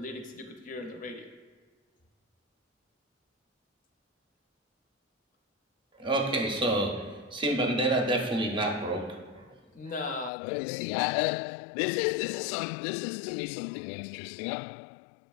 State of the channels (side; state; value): right; drops out; at 10.3 s